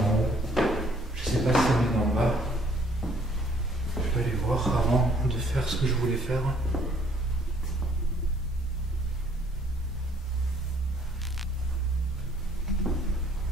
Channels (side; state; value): both; normal; correlation 0.62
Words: haut. Je sais pas si ça venait d'en bas. Je vais aller voir avant de faire ce que je voulais faire.